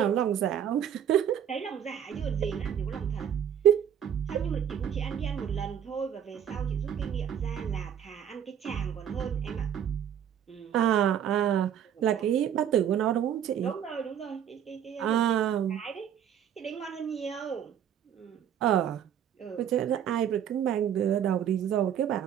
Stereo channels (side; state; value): left; quieter; 9.2 dB